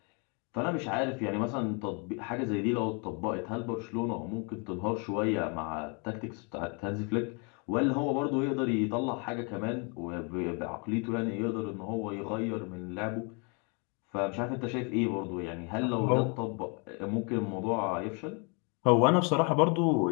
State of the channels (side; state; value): right; quieter; 34.5 dB